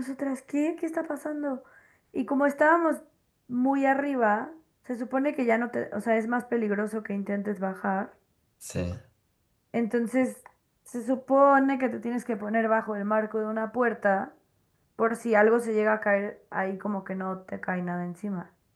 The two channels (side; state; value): both; identical; correlation 1.00